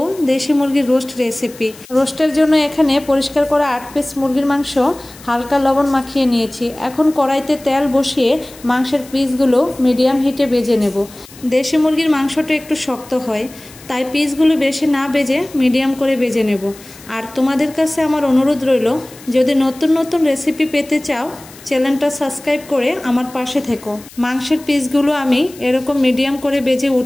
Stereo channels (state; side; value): noise; left; hiss, 21 dB below the sound